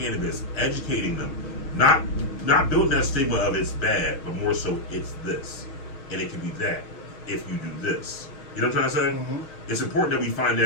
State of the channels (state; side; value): late; right; 6.4 ms